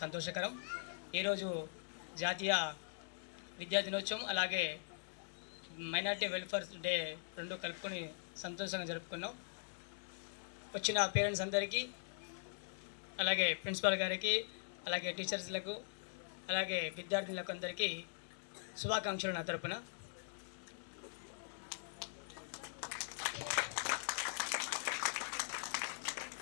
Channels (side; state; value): right; silent; digital silence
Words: సంతోషకరం. ఈరోజు జాతీయ విద్యా దినోత్సవం అలాగే మైనార్టీ వెల్ఫేర్ డే రెండు కలుపుకొని సంతోషంగా జరుపుకున్నాం. వచ్చిన పేరెంట్స్ అందరికీ, అలాగే ప్రిన్సిపాల్ గారికి, అలాగే టీచర్స్లకు, అలాగే విద్యార్థులకు అందరికీ శుభాకాంక్షలు నా తరపున.